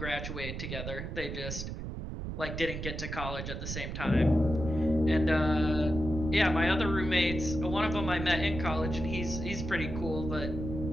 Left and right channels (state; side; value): noise; right; rumble, 6 dB below the sound